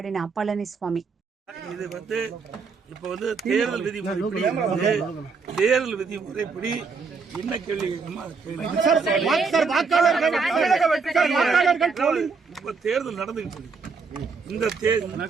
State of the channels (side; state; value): left; quieter; 4.9 dB